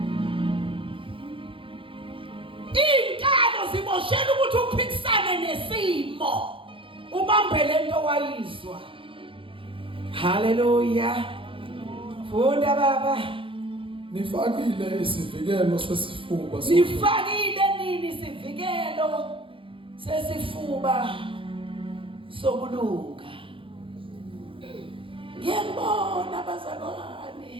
Inkalo ziboshela ukuthi uphikisane nesimo ubambele into wayizwa. Hallelujah. Funda baba. Nifakile isivikelo sesifuba. Nifakile nini isivikelo sesifuba sokulunga. Ngiyabona abazalwane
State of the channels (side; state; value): left; late; 0.25 ms